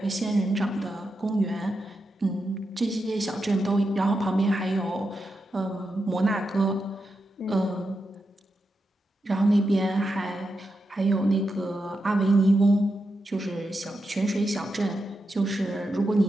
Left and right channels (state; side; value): normal; both; correlation 0.87